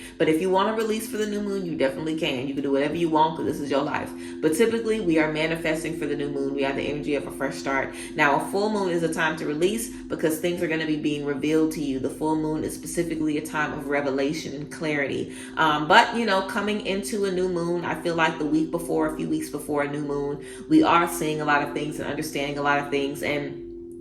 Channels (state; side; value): identical; both; correlation 1.00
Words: But if you want to release for the new moon, you definitely can. You can do whatever you want because this is your life. But typically, we are manifesting for the new moon. We have the energy of a fresh start. Now, a full moon is a time to release because things are going to be being revealed to you. The full moon is specifically a time of revelation and clarity. But coming into a new moon, I feel like the week before, a few weeks before a new moon, we are seeing a lot of things and understanding a lot of things. And